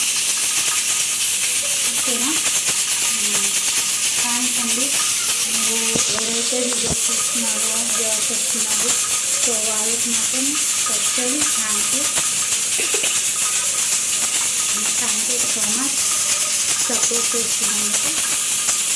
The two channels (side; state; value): both; identical; correlation 1.00